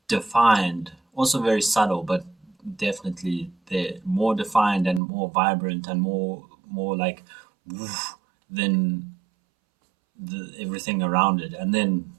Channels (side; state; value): left; drops out; at 5.0 s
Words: defined, also very subtle, but definitely there, more defined and more vibrant and more like woof, than everything around it. And then